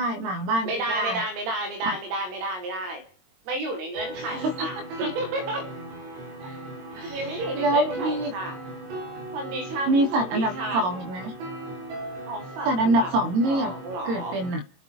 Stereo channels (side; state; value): left; late; 22 ms